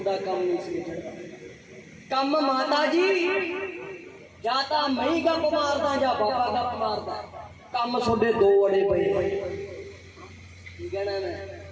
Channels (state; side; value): identical; both; correlation 1.00